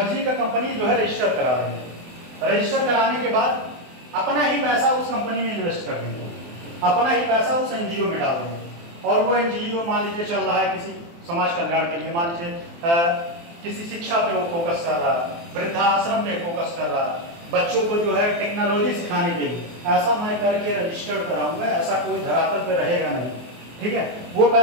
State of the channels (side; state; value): left; late; 24 ms